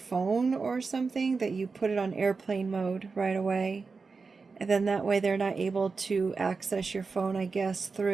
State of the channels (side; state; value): left; quieter; 4.5 dB